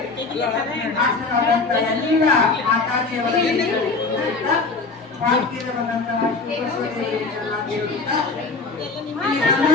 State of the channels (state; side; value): quieter; right; 4.0 dB